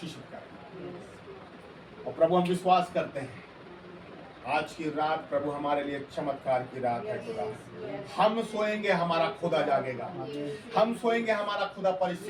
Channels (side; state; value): both; identical; correlation 1.00